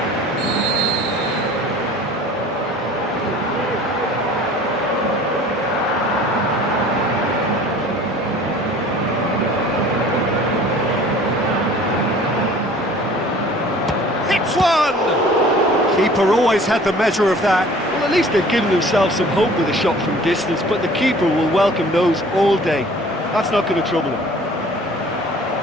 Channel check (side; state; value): both; normal; correlation 0.48